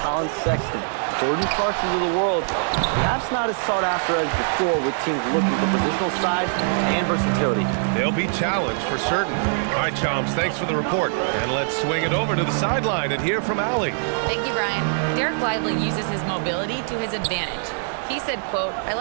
Sexton, Jordan Clarksons of the world, perhaps not as sought after as before with teams looking for positional size and versatility. They'll be challenged for certain. All right, Shams, thanks for the report. And let's swing it over to the sideline and hear from Allie. Thank you, Brian. Derek Lively uses his mobility to his advantage. He said, quote, "I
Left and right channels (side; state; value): left; silent; digital silence